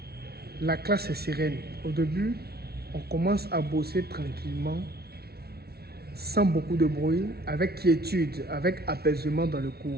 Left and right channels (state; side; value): late; left; 0.45 ms